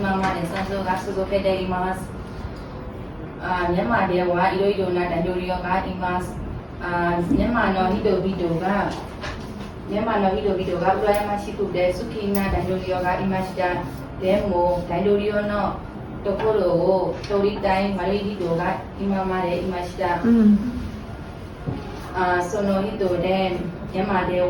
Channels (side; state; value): both; identical; correlation 1.00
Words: まで戦争が続けています。ミャンマーではいろいろな大統領がいます。ミャンマーの人々が羨ましくて好きな大統領がいました。でも大統領のところを取りたい悪い人が今までいました。その人でミャンマーで